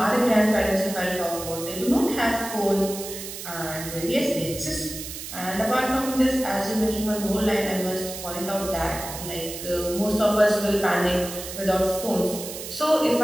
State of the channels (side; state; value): right; noise; hiss, 9 dB below the sound